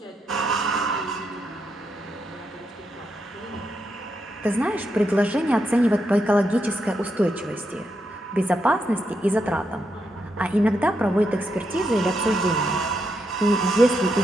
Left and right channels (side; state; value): both; normal; correlation 0.82